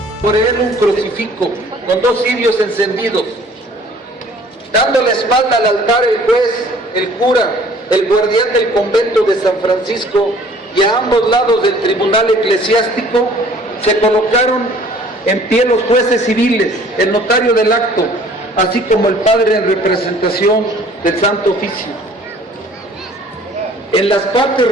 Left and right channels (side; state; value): both; normal; correlation 0.53